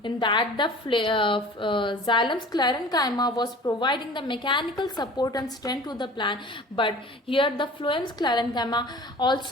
In that the xylem sclerenchyma was providing the mechanical support and strength to the plant, but here the phloem sclerenchyma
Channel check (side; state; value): both; normal; correlation 0.43